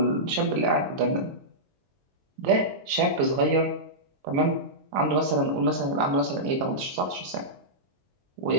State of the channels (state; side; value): late; left; 22 ms